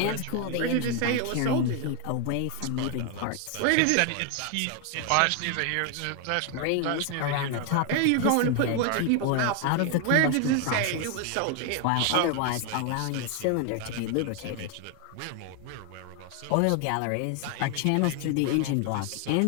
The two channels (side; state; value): both; different; correlation 0.01